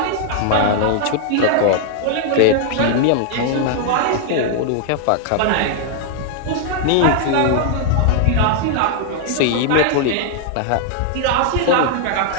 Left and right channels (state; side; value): different; both; correlation 0.00